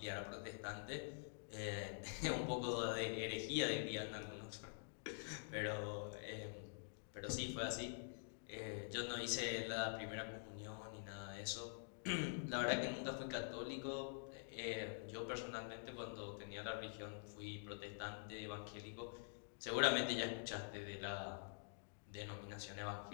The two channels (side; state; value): right; silent; digital silence